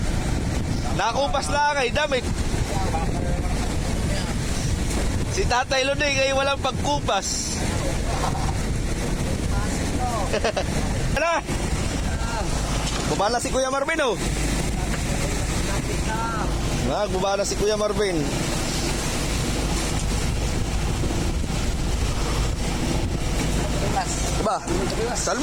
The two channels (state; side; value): identical; both; correlation 1.00